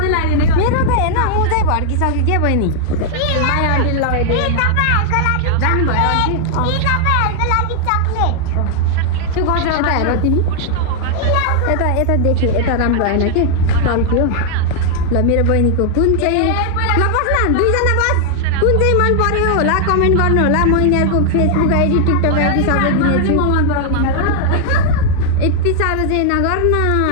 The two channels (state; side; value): different; both; correlation 0.00